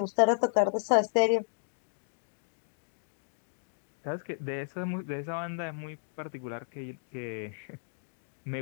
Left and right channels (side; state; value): right; silent; digital silence